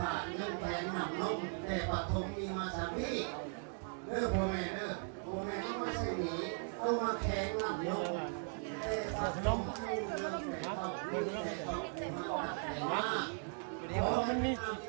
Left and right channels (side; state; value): left; silent; 52 dB below the other